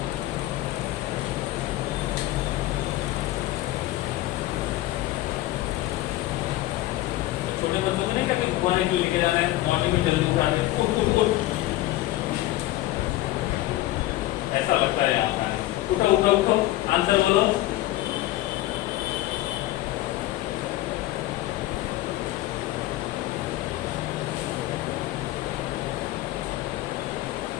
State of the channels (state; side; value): quieter; right; 16.4 dB